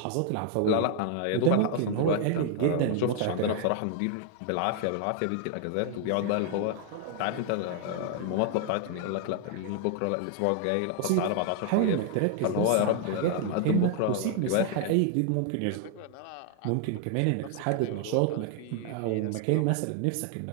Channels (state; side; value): different; both; correlation 0.00